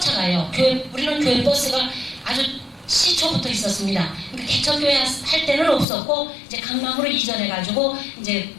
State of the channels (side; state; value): right; drops out; at 5.9 s